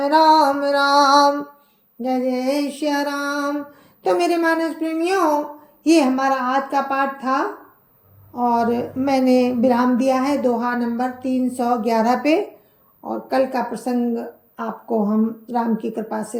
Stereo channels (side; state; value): both; identical; correlation 1.00